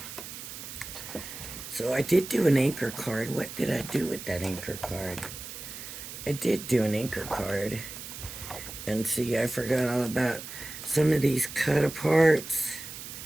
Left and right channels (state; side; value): noise; right; hiss, 11 dB below the sound